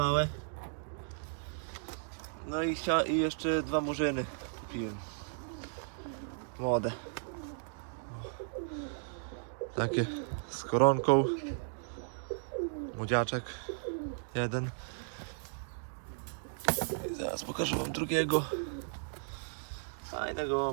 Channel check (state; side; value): silent; left; digital silence